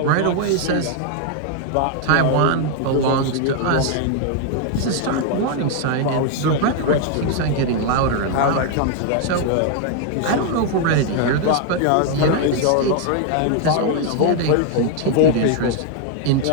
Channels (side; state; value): both; different; correlation 0.00